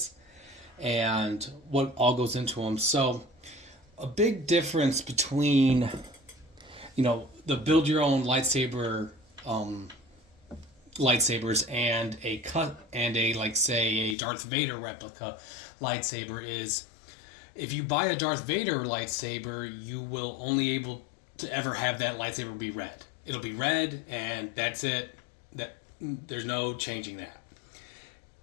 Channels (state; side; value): drops out; right; at 14.2 s